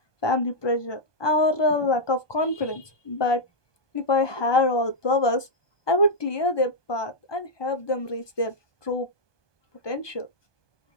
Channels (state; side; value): late; right; 1.2 ms